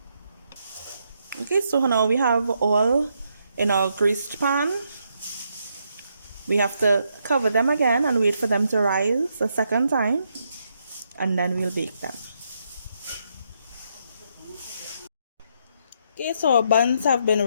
Okay, so now we have all in our greased pan. We have to cover them again and wait for them to rise a second time, and then we'll bake them. Okay, so our buns have been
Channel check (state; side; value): inverted; both; correlation -0.77